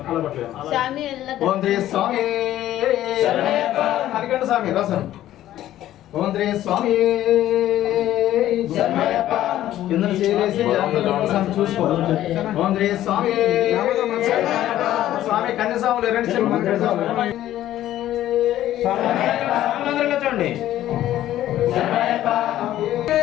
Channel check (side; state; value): right; quieter; 13.2 dB